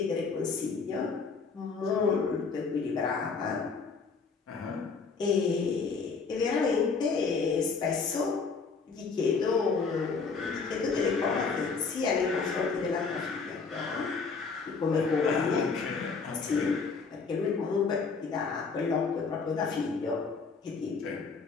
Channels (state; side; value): quieter; right; 4.9 dB